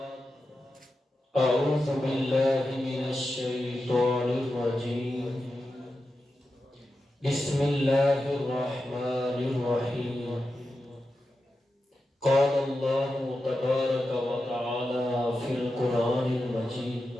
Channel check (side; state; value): both; normal; correlation 0.90